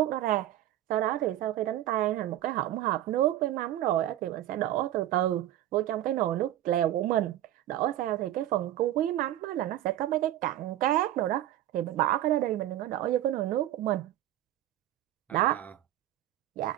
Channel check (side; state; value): left; quieter; 13.4 dB